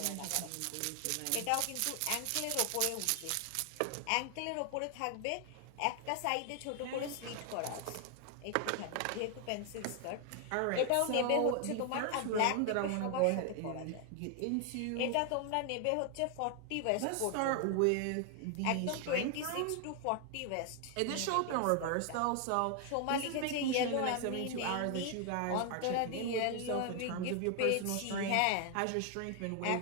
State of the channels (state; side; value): different; both; correlation 0.00